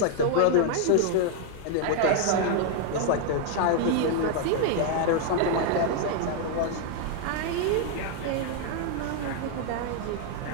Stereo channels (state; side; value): different; both; correlation 0.00